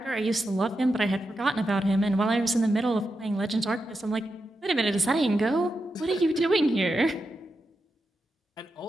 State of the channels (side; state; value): both; normal; correlation 0.87